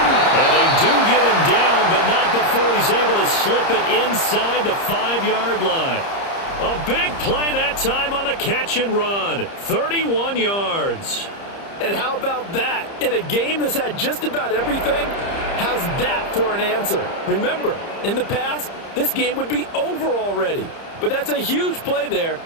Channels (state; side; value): late; right; 30 ms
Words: And they do get him down, but not before he's able to slip it inside the 5-yard line. A big play that time on the catch and run. 31 yards. And how about that? In a game that's had just about everything, how's that for an answer? Remember, in the past, this game would be over already. But that's a huge play there